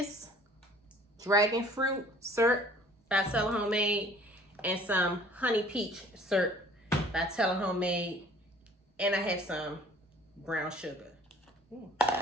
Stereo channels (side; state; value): both; normal; correlation 0.52